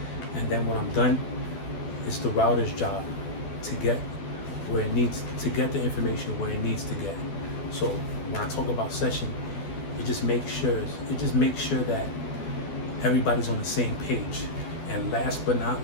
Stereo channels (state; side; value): late; right; 12 ms